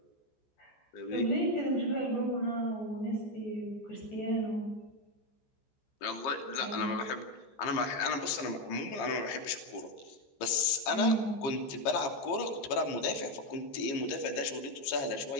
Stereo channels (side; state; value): right; late; 15 ms